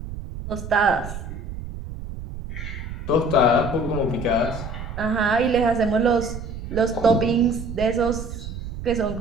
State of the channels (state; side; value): noise; right; rumble, 9 dB below the sound